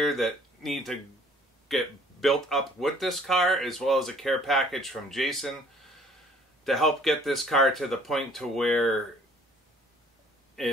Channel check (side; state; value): both; normal; correlation 0.57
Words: that need to get built up with this car, as well as a care package from Jason to help get this car to the point to where